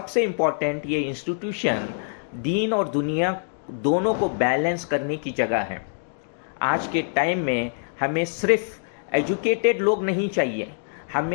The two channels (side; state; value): right; silent; digital silence